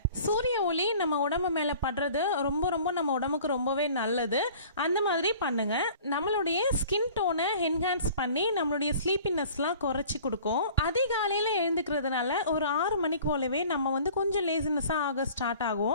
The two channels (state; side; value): inverted; both; correlation -0.47